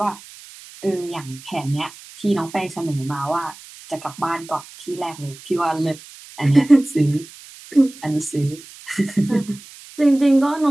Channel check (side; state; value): right; noise; hiss, 19 dB below the sound